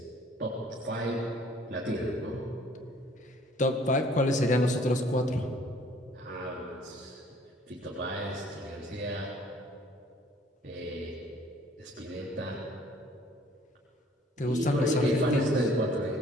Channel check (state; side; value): normal; both; correlation 0.57